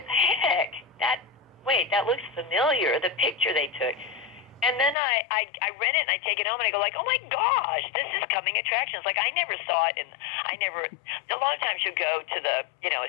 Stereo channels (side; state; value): right; drops out; at 5.0 s